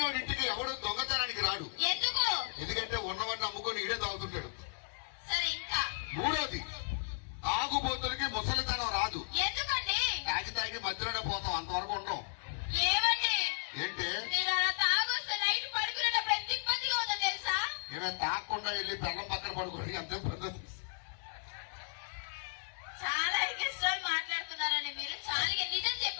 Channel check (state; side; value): silent; right; 54 dB below the other